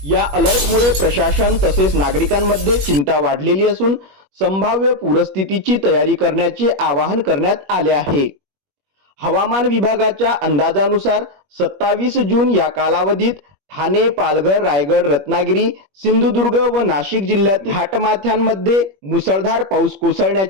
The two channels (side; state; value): left; late; 21 ms